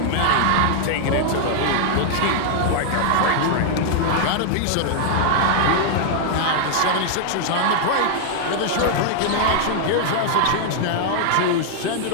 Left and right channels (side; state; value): both; different; correlation -0.01